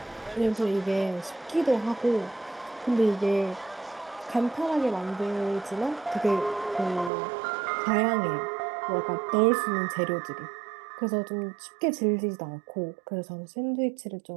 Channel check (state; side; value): drops out; left; at 7.1 s